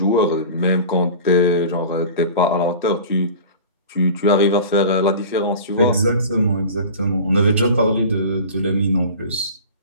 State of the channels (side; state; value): both; inverted; correlation -0.37